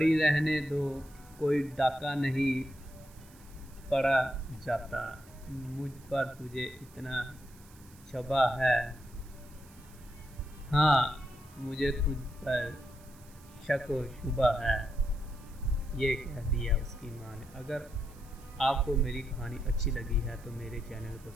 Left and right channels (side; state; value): right; noise; hiss, 25 dB below the sound